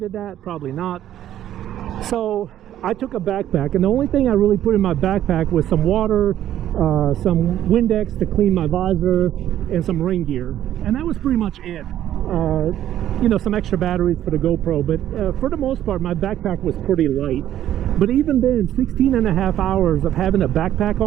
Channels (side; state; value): left; quieter; 11.8 dB